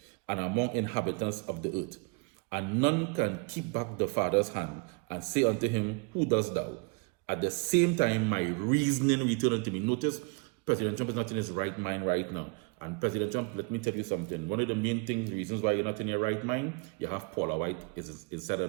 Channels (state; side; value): quieter; left; 32.6 dB